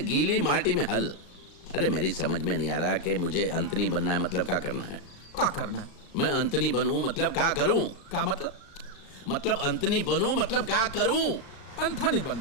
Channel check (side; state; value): right; late; 35 ms